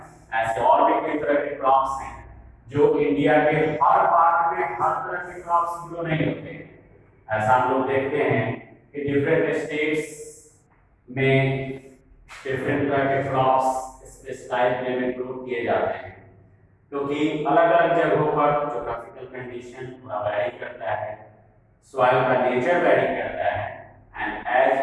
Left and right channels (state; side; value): identical; both; correlation 1.00